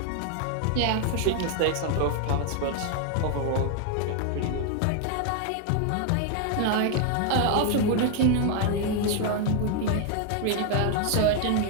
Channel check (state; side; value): different; both; correlation 0.00